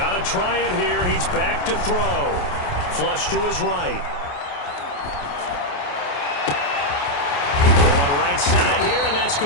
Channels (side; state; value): right; late; 28 ms